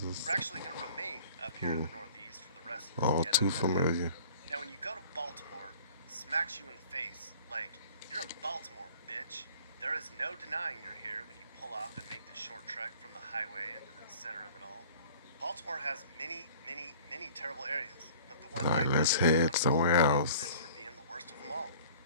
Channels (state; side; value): inverted; both; correlation -0.49